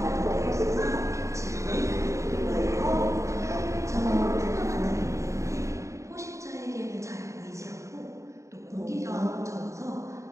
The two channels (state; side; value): late; left; 0.15 ms